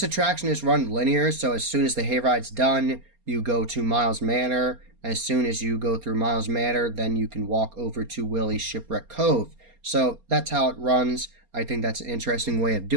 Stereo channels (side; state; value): left; late; 4.3 ms